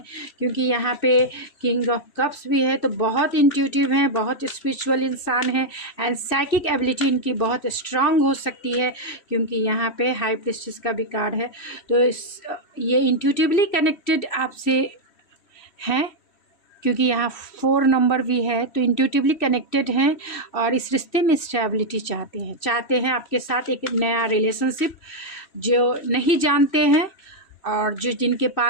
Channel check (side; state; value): right; late; 3.1 ms